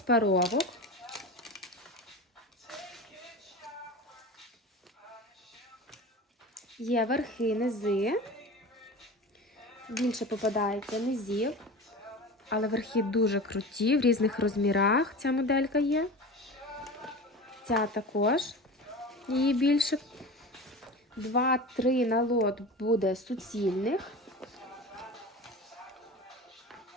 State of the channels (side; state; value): both; normal; correlation 0.31